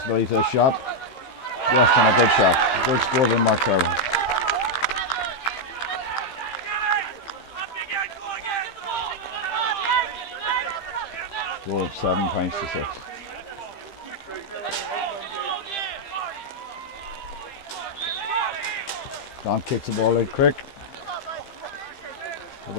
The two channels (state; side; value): late; right; 15 ms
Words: for this shot. Yes, and a good shot. Good score by Mark Carby. Score of 7 points to 6. Don kicks the ball out quick. Look